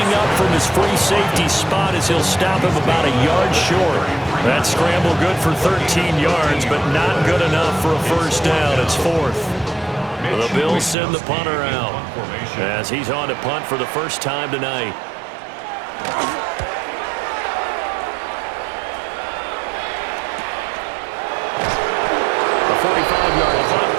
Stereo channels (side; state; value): left; drops out; at 11.0 s